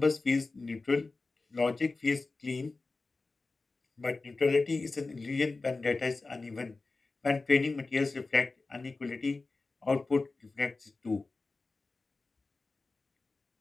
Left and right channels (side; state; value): right; quieter; 3.7 dB